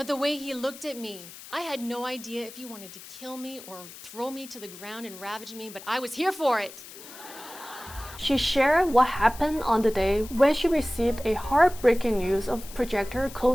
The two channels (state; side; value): noise; left; hiss, 16 dB below the sound